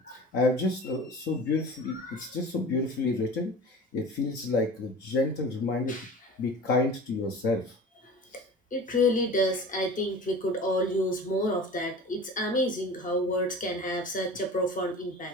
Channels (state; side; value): normal; both; correlation 0.38